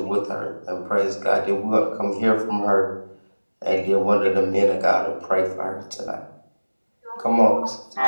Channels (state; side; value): inverted; both; correlation -1.00